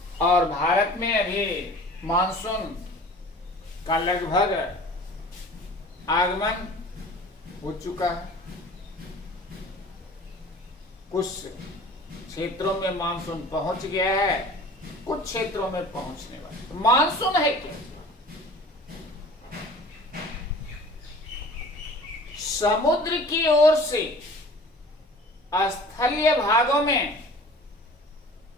और भारत में अभी मानसून का लगभग आगमन हो चुका है। कुछ क्षेत्रों में मानसून पहुंच गया है, कुछ क्षेत्रों में पहुंचने वाला। तो मानसून है क्या? समुद्र की ओर से स्थलीय भागों में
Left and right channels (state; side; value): normal; both; correlation 0.44